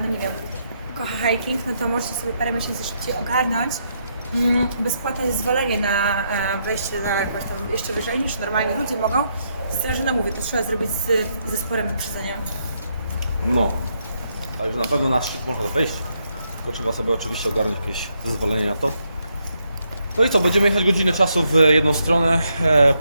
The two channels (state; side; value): inverted; both; correlation -0.77